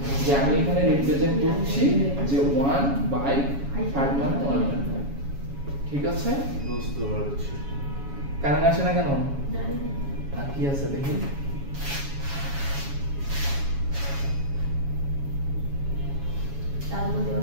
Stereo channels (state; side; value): late; left; 7.2 ms